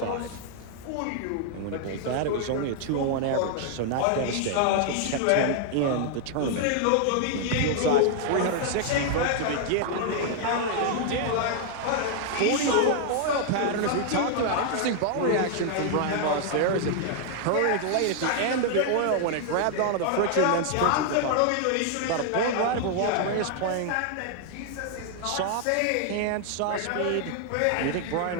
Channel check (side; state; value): both; different; correlation 0.00